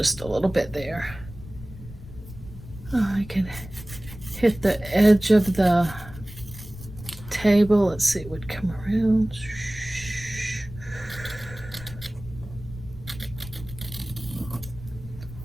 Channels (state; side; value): noise; left; rumble, 14 dB below the sound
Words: a little bit there. Oh, I can hit the edge of the table. Let's see, it would come around.